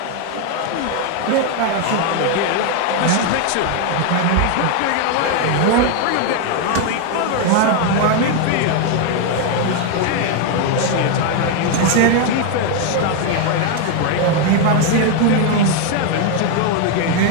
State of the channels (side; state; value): both; different; correlation 0.01